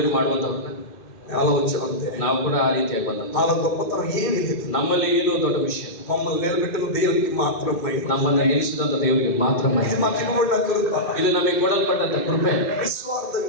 ಮಾಡುವಂತವ್ರನ್ನ అలా వచ్చామంతే. ನಾವು ಕೂಡ ಆ ರೀತಿಯಾಗಿ ಬಂದಂತ. వాళ్ళ గొప్పతనం ఏమీ లేదు, ನಮ್ಮಲ್ಲಿ ಏನು ದೊಡ್ಡ ವಿಷಯ, మమ్మల్ని నిలబెట్టిన దేవునికి మాత్రమే, ನಮ್ಮನ್ನ ನಿಲ್ಲಿಸಿದಂತ ದೇವರಿಗೆ ಮಾತ್ರ ಮಹಿಮೆ. ఇది మాకు ఇవ్వబడిన కృప. ಇದು ನಮಗೆ ಕೊಡಲ್ಪಟ್ಟಂತ ಕೃಪೆ.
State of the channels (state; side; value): late; right; 2.6 ms